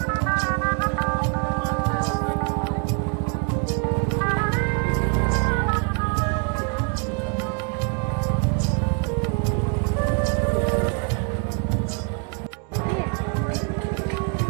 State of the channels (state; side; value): quieter; left; 38.1 dB